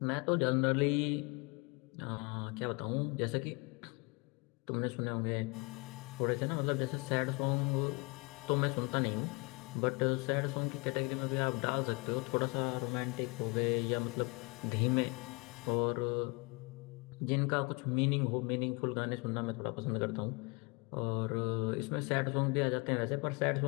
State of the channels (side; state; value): right; quieter; 29.4 dB